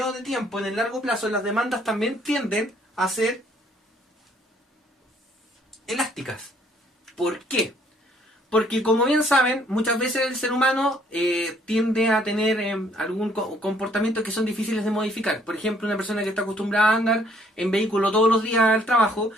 de tiempo, en el largo plazo las demandas también tienden a ser elásticas. ¿Por qué? Porque como bien saben, muchas veces el ser humano tiende a tener algún comportamiento que son difíciles de modificar. Por ejemplo, una persona que está acostumbrada a andar en vehículo todos los días al trabajo,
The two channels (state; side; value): normal; both; correlation 0.64